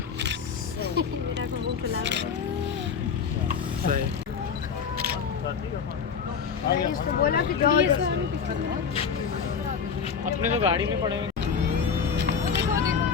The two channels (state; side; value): quieter; right; 6.5 dB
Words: मेरा मुंह खुला सही। इसको बोला कि जाओ अपने तो गाड़ी में पड़े हुए।